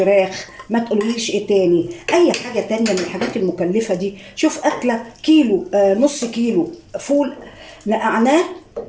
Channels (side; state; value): both; identical; correlation 1.00